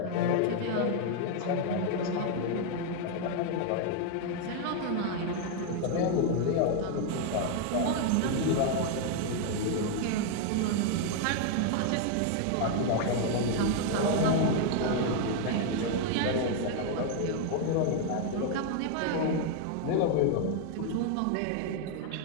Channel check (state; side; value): different; both; correlation 0.01